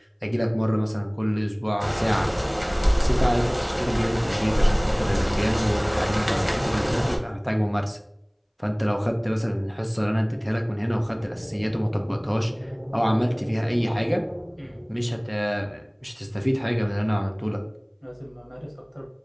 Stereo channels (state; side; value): identical; both; correlation 1.00